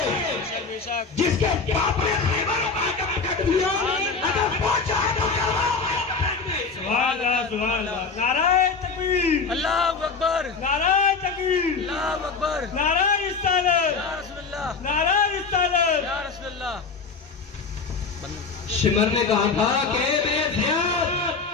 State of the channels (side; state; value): right; quieter; 4.7 dB